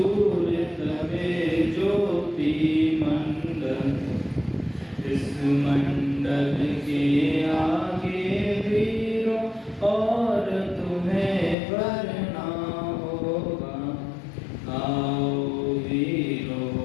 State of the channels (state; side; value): drops out; right; at 11.6 s